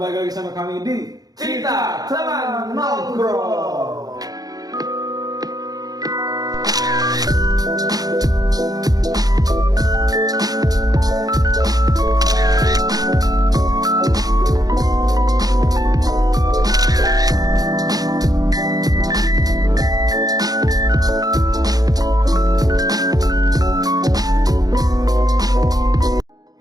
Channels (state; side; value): late; left; 0.18 ms